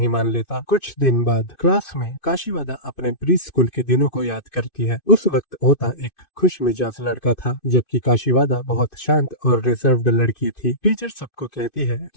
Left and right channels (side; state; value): right; late; 2.6 ms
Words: मान लेता। कुछ दिन बाद क्लास में काशीवादा अपने प्री स्कूल के दिनों को याद करती है। उस वक्त ओता एक खुश मिजाज लड़का था, जबकि काशीवादा बहुत शांत और रिजर्व्ड लड़की थी। टीचर सबको कहती है